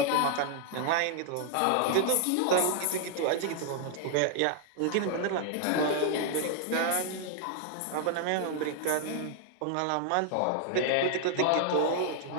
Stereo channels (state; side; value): different; both; correlation 0.00